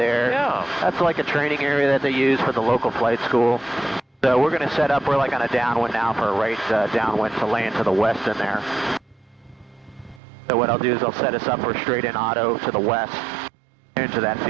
Yeah. That's like a training area that they use for the local flight school. So we're going to set up, we're like on a downwind now for a right downwind to land to the west in there. So what I'll do is I'll set us up for straight in auto to the west into that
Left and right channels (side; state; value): left; drops out; at 10.2 s